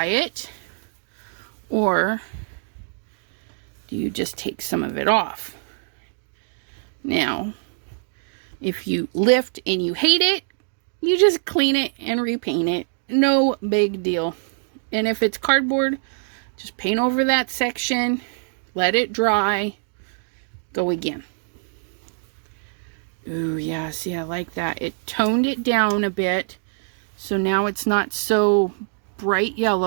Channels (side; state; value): left; silent; digital silence